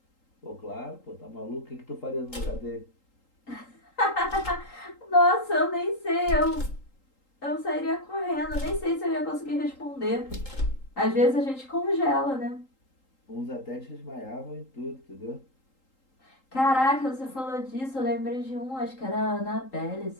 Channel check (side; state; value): right; late; 3.8 ms